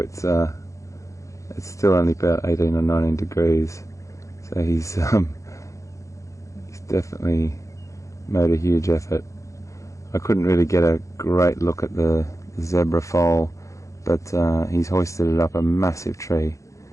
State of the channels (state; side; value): late; right; 0.15 ms